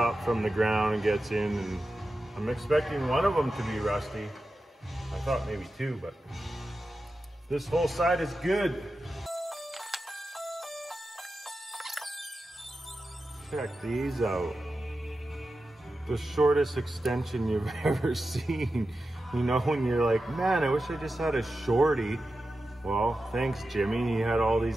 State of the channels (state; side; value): normal; both; correlation 0.92